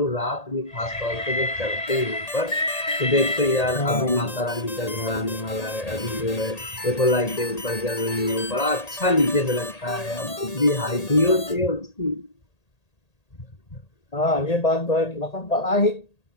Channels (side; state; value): right; late; 1.8 ms